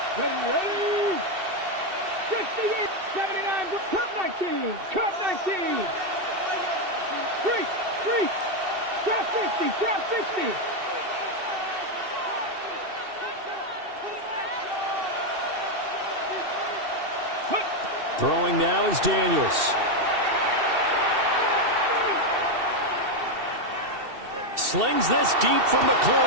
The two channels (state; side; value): late; left; 2.7 ms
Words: Ready, ready. 68, 79, cut 19, cut 19. 3, drop 50, drop 60. Throwing now is Daniels. Slings this deep from